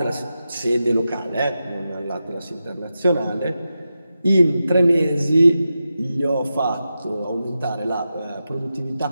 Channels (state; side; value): inverted; both; correlation -0.91